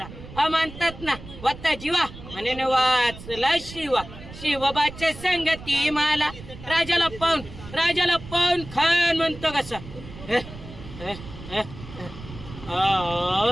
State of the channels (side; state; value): right; noise; rumble, 15 dB below the sound